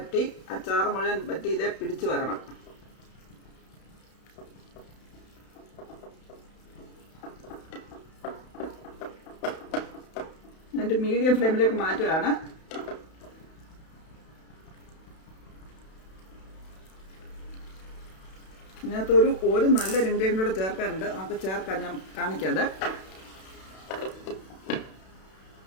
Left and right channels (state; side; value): late; right; 32 ms